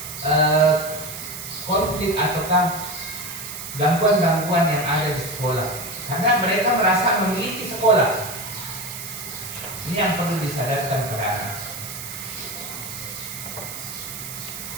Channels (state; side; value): noise; right; hiss, 9 dB below the sound